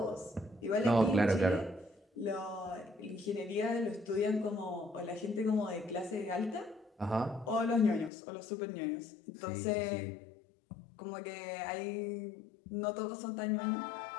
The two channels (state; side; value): drops out; right; at 8.1 s